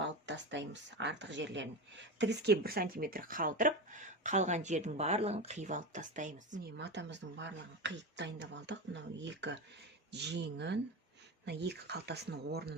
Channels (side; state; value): both; normal; correlation 0.21